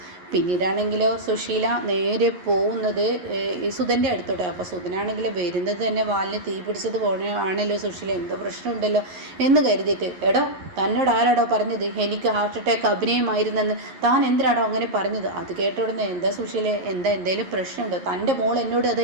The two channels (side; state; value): left; late; 11 ms